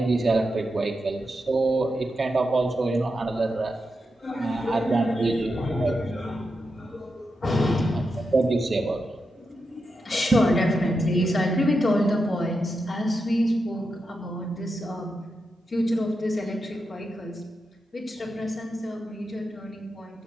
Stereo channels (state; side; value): normal; both; correlation 0.87